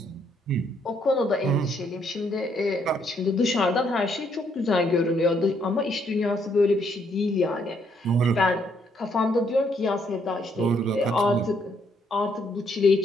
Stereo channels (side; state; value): both; normal; correlation 0.71